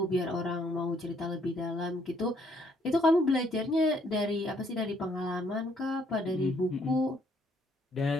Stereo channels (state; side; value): normal; both; correlation 0.67